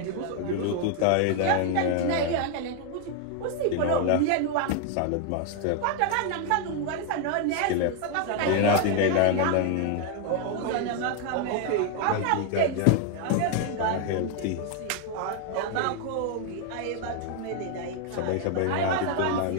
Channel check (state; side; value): different; both; correlation 0.01